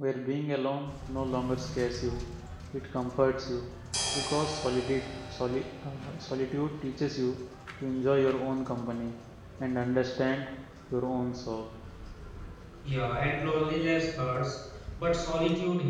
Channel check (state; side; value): identical; both; correlation 1.00